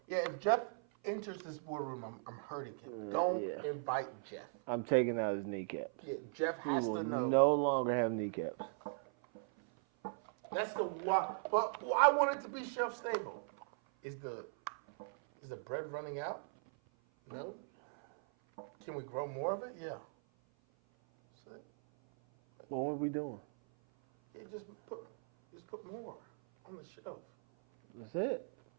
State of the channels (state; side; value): silent; left; 52 dB below the other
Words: Yeah, if Jeff enters this boardroom, I'm hurting him. Don't invite Jeff. I'm taking out his kneecaps. Yeah, Jeff has He will to know. no longer have kneecaps. That's the why. But I want it to be shelf stable. Is the bread running out? No. Can we grow more of it? Yeah. So, What are we doing? yeah, just put more on the shelf. That's it.